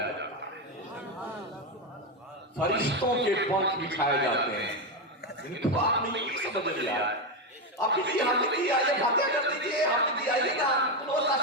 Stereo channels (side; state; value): both; normal; correlation 0.09